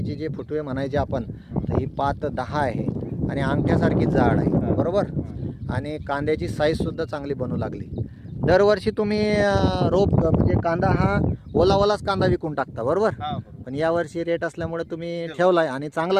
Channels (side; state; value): both; identical; correlation 1.00